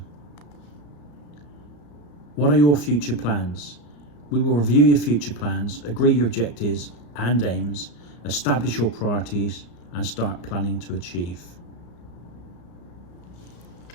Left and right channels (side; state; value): right; late; 34 ms